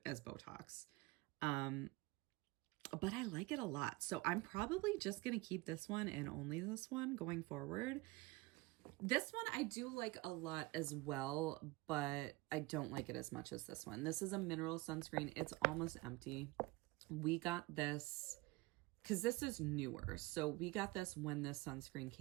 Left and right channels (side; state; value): left; quieter; 21.8 dB